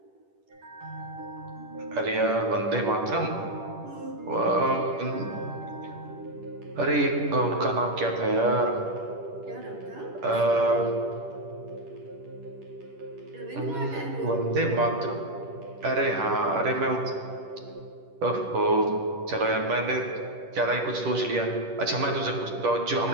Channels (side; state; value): left; late; 10 ms